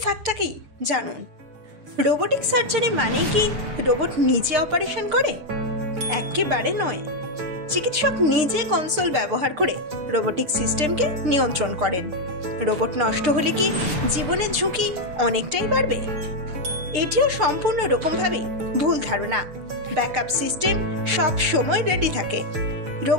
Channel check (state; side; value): late; left; 6.9 ms